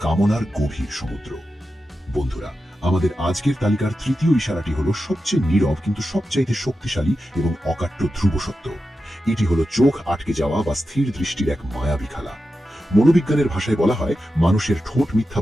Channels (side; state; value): both; normal; correlation 0.91